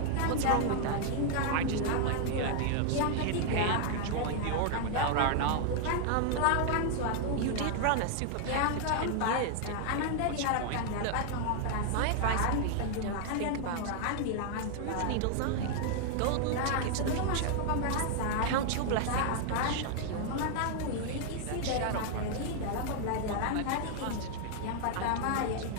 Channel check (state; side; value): different; both; correlation 0.00